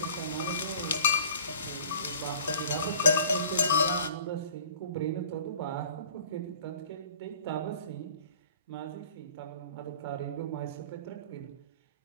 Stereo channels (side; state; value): both; inverted; correlation -0.47